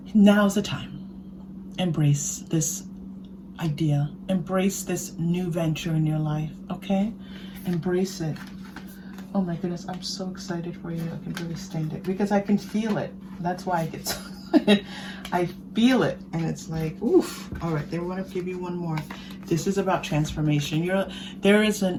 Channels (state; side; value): identical; both; correlation 1.00